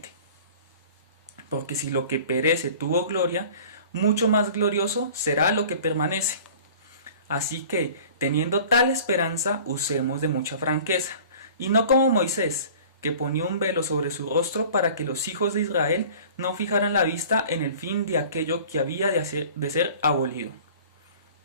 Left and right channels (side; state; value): both; inverted; correlation -0.45